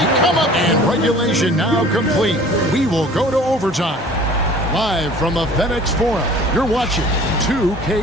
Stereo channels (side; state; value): both; normal; correlation 0.48